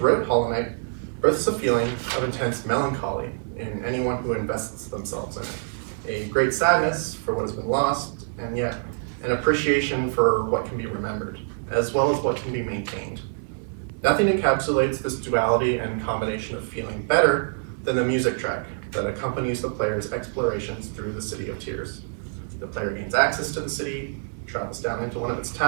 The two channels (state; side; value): silent; left; digital silence